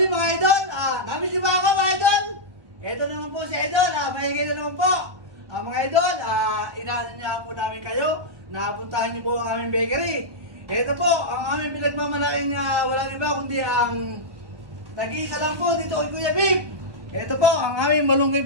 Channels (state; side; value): late; left; 1.1 ms